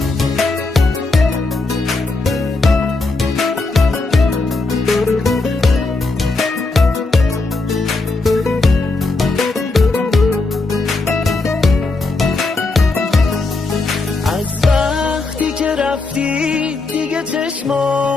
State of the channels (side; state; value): right; quieter; 3.5 dB